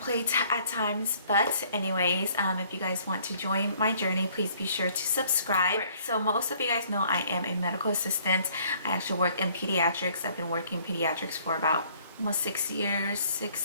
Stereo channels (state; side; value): inverted; both; correlation -0.60